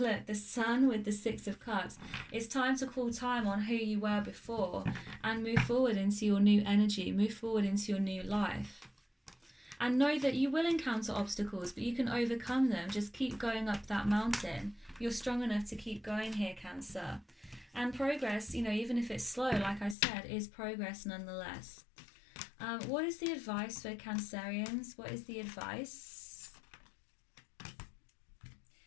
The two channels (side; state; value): right; drops out; at 20.0 s